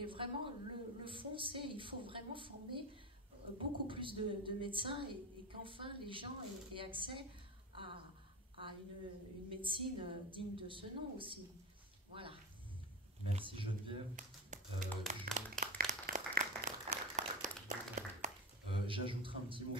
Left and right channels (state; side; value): normal; both; correlation 0.23